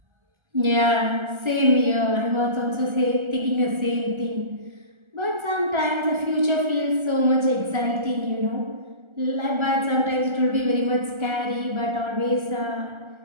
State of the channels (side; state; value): left; late; 1.3 ms